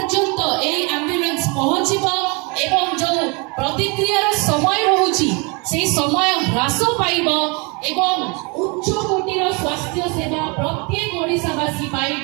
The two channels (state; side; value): quieter; left; 30.6 dB